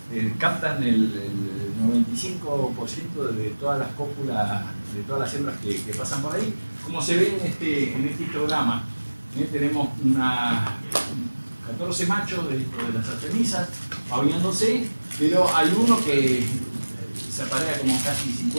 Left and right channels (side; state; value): both; inverted; correlation -1.00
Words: captan el 95% de todas las cópulas, de todas las hembras que pasan por ahí. Como se ve en este histograma, tenemos 14 machos de las artemisas pavoneándose, pero hay uno que se aparea como casi